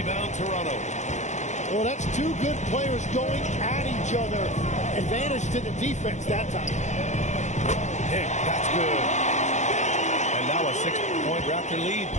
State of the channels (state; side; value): late; right; 0.34 ms